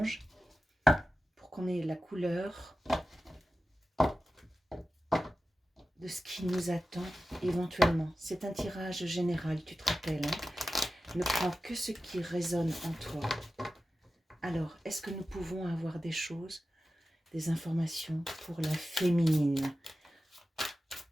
pour qu'on ait la couleur de ce qui nous attend éventuellement. C'est un tirage général, tu te rappelles, hein? Ne prends que ce qui résonne en toi. Alors, est-ce que nous pouvons avoir des choses, des informations pour la féminine?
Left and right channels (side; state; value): both; normal; correlation 0.94